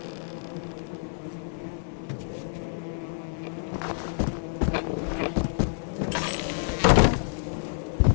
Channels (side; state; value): right; silent; digital silence